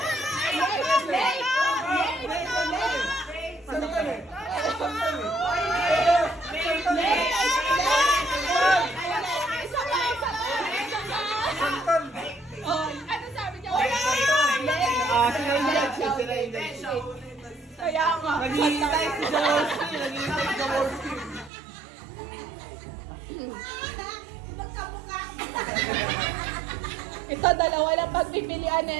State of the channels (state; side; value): drops out; left; at 21.5 s